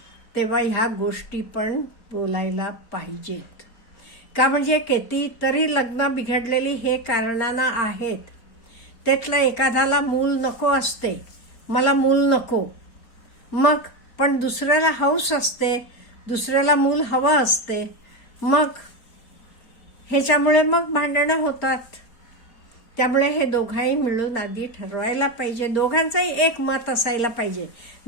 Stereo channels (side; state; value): right; late; 4.3 ms